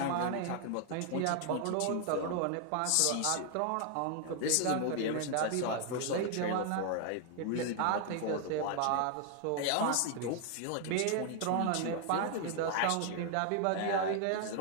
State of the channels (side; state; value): both; different; correlation 0.00